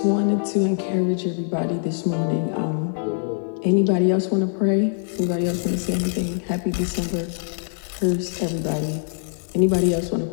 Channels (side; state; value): right; silent; 63 dB below the other